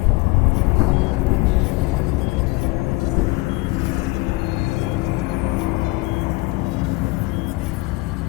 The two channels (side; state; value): right; quieter; 21.8 dB